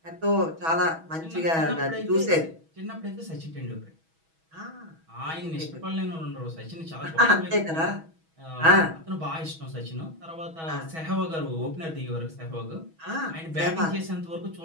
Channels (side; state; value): left; late; 6.2 ms